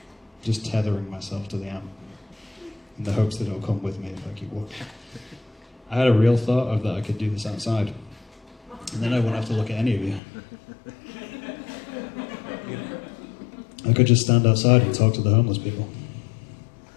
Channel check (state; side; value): drops out; right; at 10.2 s